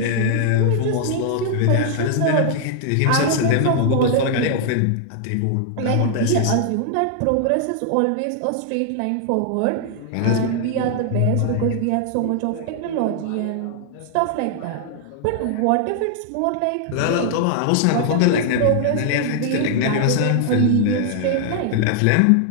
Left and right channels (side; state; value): both; different; correlation 0.00